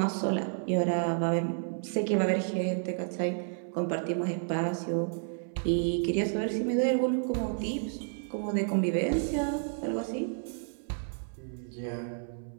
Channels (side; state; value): left; silent; 57 dB below the other